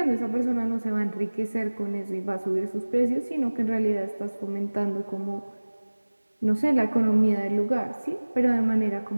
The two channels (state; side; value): inverted; both; correlation -1.00